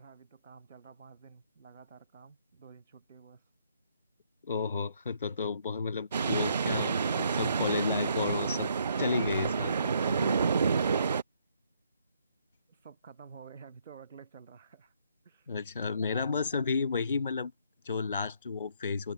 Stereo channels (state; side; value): inverted; both; correlation -0.69